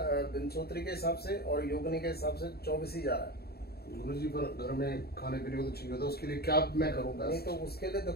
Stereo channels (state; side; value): late; right; 0.46 ms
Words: विंशोत्री के हिसाब से और योगिनी के हिसाब से 24 ही जा रहा है। गुरुजी, पर घर में खाने पीने को तो चाहिए होता है, उसके लिए क्या मैं करूँगा? नहीं, तो उसके लिए